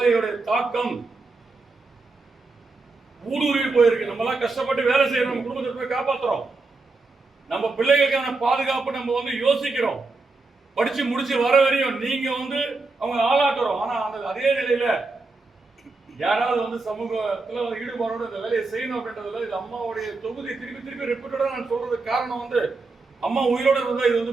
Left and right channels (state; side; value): quieter; left; 3.7 dB